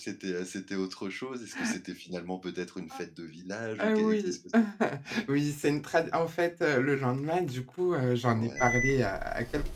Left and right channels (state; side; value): identical; both; correlation 1.00